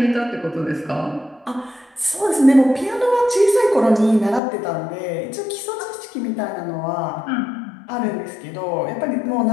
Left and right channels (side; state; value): right; drops out; at 4.4 s